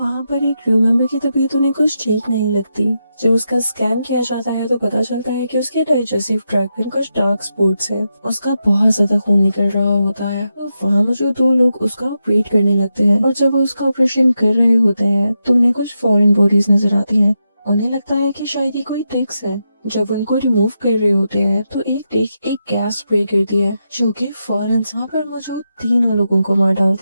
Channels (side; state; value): both; inverted; correlation -0.86